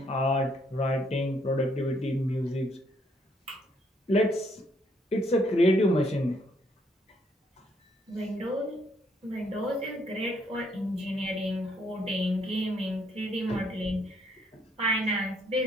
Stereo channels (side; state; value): both; normal; correlation 0.70